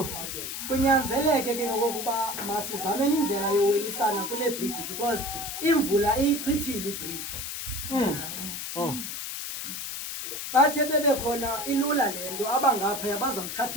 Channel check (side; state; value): left; noise; hiss, 6 dB below the sound